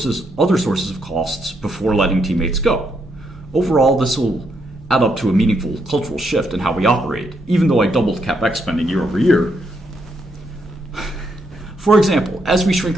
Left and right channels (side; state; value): both; normal; correlation 0.77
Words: other sources of costs before letting teammates go. Overall, this will add up to a meaningful cultural shift in how we operate, even though I doubled CapEx spending year over year. For example, as we shrink